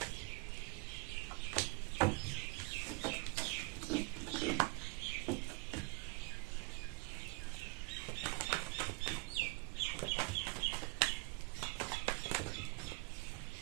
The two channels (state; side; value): quieter; left; 27.4 dB